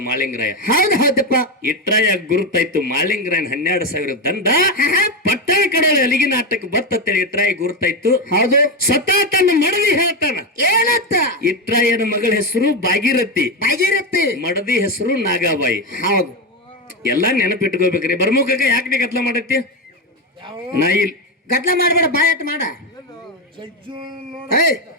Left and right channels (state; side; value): normal; both; correlation 0.11